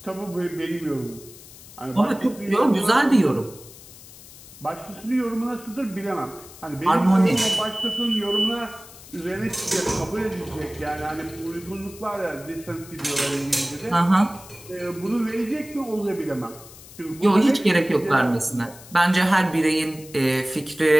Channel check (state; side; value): noise; left; hiss, 19 dB below the sound